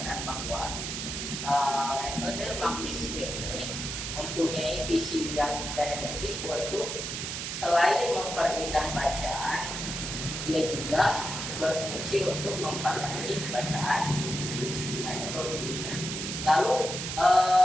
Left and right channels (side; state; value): right; noise; hiss, 4 dB below the sound